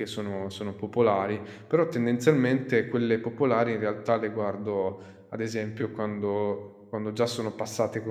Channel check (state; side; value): identical; both; correlation 1.00